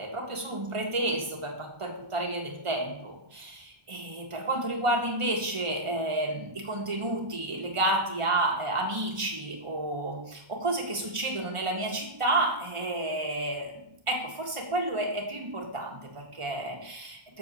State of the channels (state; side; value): late; left; 1.4 ms